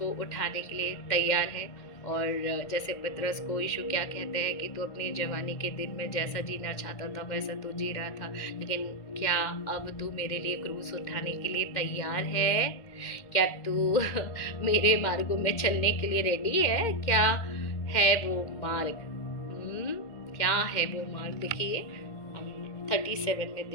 उठाने के लिए तैयार है। और जैसे पतरस को यीशु क्या कहते हैं कि तू अपनी जवानी के दिन में जैसा जीना चाहता था वैसा तू जी रहा था, लेकिन क्या अब तू मेरे लिए क्रूस उठाने के लिए तैयार है? क्या तू मेरे मार्गों में चलने के लिए रेडी है? क्या है वो मार्ग? क्या है वो मार्ग? देखिए हम 37 में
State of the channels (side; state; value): right; late; 2.2 ms